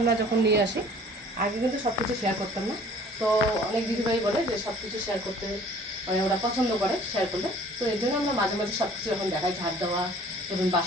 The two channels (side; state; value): both; normal; correlation 0.52